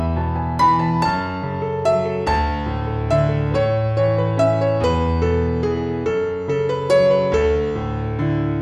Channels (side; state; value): both; identical; correlation 1.00